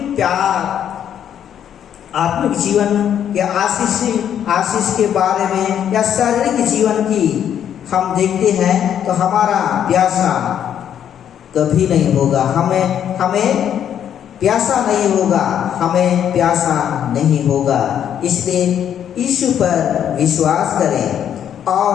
प्यार, आत्मिक जीवन के आशीष के बारे में या शारीरिक जीवन की हम देखते हैं तो हमारा प्यासा कभी नहीं होगा, हमें प्यासा नहीं होगा, हमें प्यासा नहीं होगा। इसलिए यीशु पर विश्वास करें,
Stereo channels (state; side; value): quieter; right; 9.4 dB